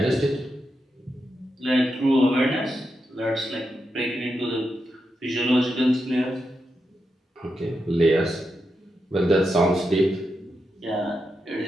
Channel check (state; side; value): normal; both; correlation 0.86